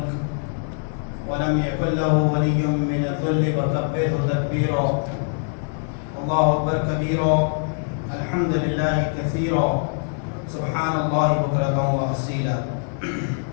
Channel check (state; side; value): silent; right; 63 dB below the other